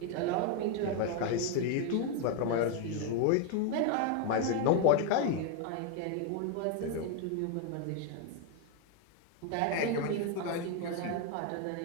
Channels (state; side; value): different; both; correlation 0.01